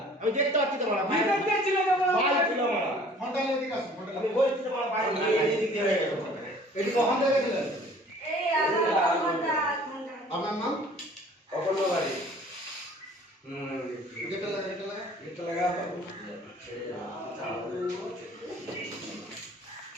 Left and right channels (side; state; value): both; normal; correlation 0.51